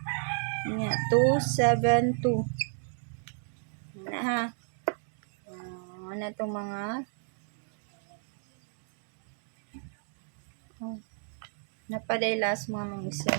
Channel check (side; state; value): left; silent; 56 dB below the other